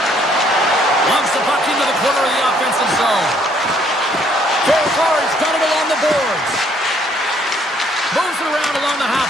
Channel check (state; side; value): normal; both; correlation 0.65